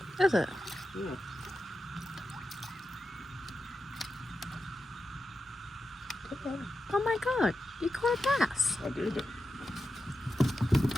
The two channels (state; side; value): normal; both; correlation 0.90